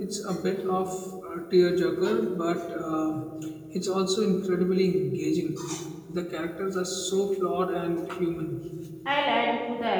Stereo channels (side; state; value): both; identical; correlation 1.00